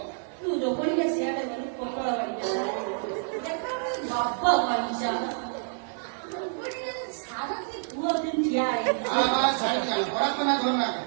ତୁ ରୋପଣିକା ସିଆଡେ ଗଲୁ ପୋଟଳ ବାଡ଼ିକା ବାପ ବାଣିଜା ସାରା ପୁଅ ଦିନ ଠିଆ ହେଇଛି ପରାପନା ଧରନା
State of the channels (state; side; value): silent; left; digital silence